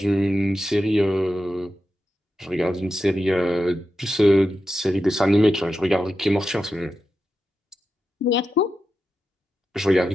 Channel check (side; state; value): both; normal; correlation 0.90